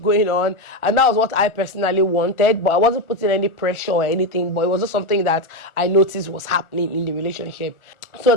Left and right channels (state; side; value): late; right; 1.4 ms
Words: on. And that was what I personally wanted, but I wasn't putting any pressure or anything, but it was just something that I noticed was happening in the relationship. So